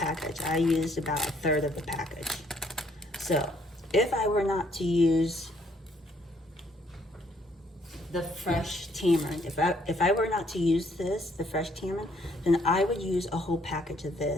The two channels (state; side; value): normal; both; correlation 0.67